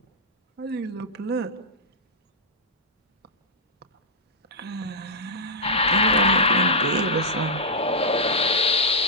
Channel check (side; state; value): both; normal; correlation -0.09